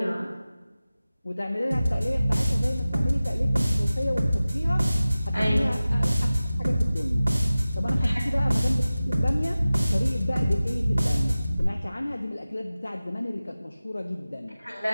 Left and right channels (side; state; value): both; inverted; correlation -0.96